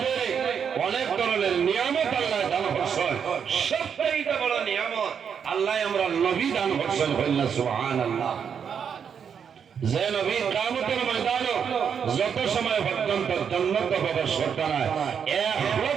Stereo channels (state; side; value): quieter; left; 7.3 dB